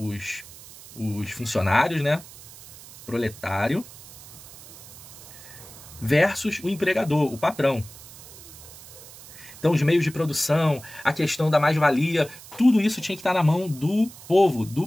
funcionários, né? Proletário, versus o empregador, o patrão. Então, os meios de produção, a questão da mais-valia, tudo isso tinha que estar na mão do povo,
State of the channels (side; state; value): right; noise; hiss, 18 dB below the sound